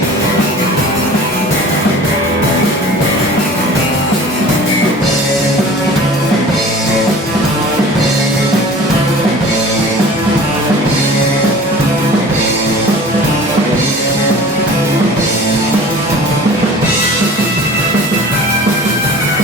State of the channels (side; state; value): both; normal; correlation 0.43